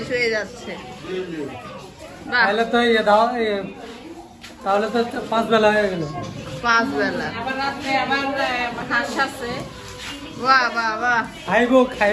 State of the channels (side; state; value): both; identical; correlation 1.00